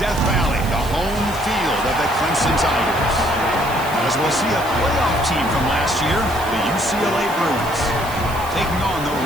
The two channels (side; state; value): right; noise; hiss, 15 dB below the sound